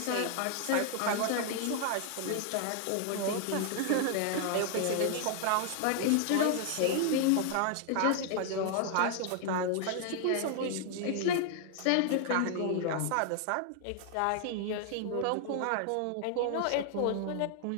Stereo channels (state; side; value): different; both; correlation 0.00